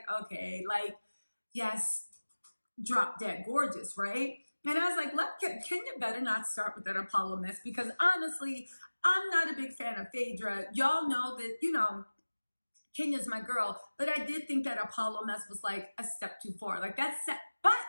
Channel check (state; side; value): inverted; both; correlation -1.00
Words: okay, like, yes, drop dead gorgeous, right? And I was like, Kenya better not start with that Apollo mess because honestly, I'm not a big fan of Phaedra. Y'all know that, Kenya's my girl, but I did think that Apollo mess was like a step too far. Like but